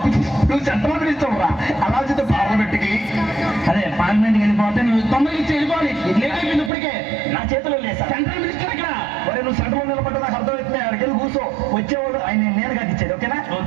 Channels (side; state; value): left; drops out; at 6.7 s